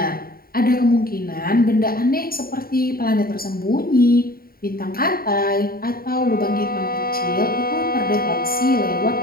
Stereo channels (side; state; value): right; late; 0.43 ms